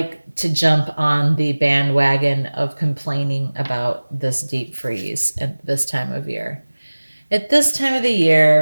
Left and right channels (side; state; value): both; inverted; correlation -1.00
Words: to jump on the bandwagon of complaining about this deep freeze at this time of year. At this time of the